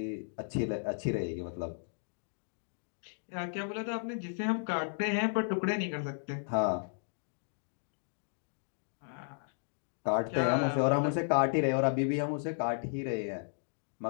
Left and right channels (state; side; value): silent; right; digital silence